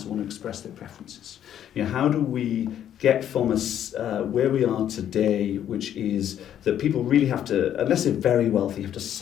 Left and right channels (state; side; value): quieter; right; 10.4 dB